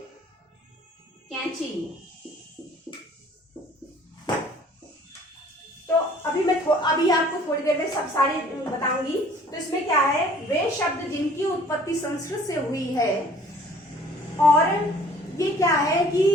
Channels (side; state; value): both; normal; correlation 0.53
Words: कैंची। तो अभी आपको थोड़ी देर में सब सारी बताऊंगी। तो इसमें क्या है, वे शब्द जिनकी उत्पत्ति संस्कृत से हुई है, और ये क्या है